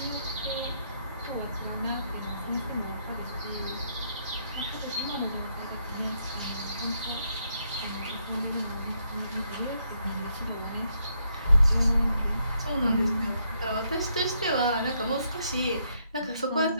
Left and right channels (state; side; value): inverted; both; correlation -0.75